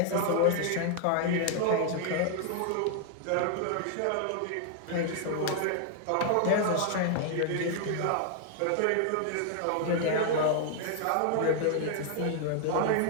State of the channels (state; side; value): different; both; correlation 0.00